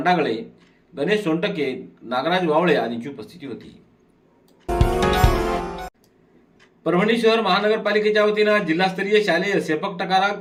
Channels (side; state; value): both; identical; correlation 1.00